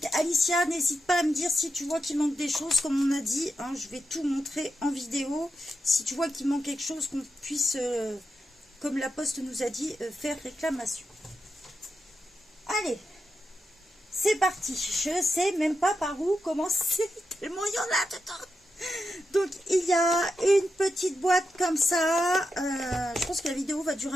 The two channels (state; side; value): normal; both; correlation 0.87